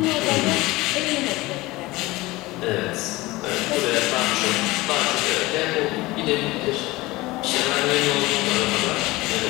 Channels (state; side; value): quieter; right; 20.3 dB